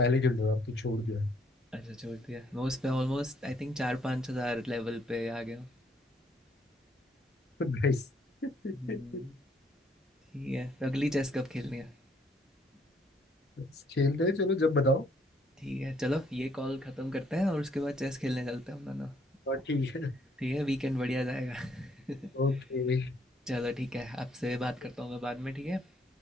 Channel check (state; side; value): normal; both; correlation 0.67